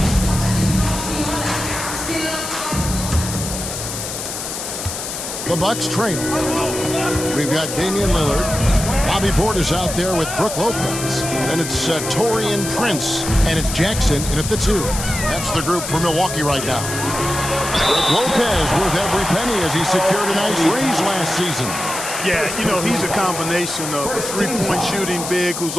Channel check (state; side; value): noise; left; hiss, 6 dB below the sound